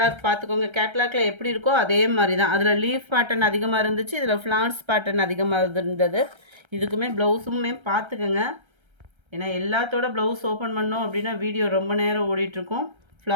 பார்த்துக்கோங்க. கேட்லாக்ல எப்படி இருக்கோ அதே மாதிரி தான். அதில் லீஃப் பேட்டர்ன் அதிகமாக இருந்துச்சு, இதில் ஃப்ளார்ஸ் பேட்டர்ன் அதிகமாக இருந்தது. இதுக்குமே ப்ளவுஸுமே பார்த்துக்கோங்க. ஏன்னா எல்லாத்தோட ப்ளவுஸ் ஓப்பன் பண்ணோம் அப்படின்னா வீடியோ ரொம்ப நேரம் ஓடிட்டுருக்கும்.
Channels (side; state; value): left; late; 1.3 ms